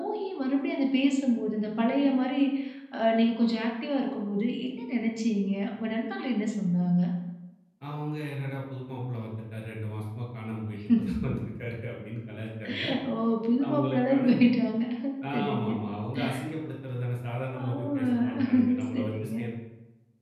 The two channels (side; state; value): both; identical; correlation 1.00